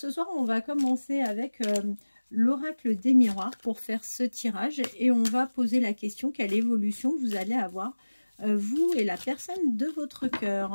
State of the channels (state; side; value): inverted; both; correlation -1.00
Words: soir, on va commencer avec l'oracle des miroirs pour faire ce tirage. Et on va poser la question, quelle évolution vous allez avoir, vous et la personne de votre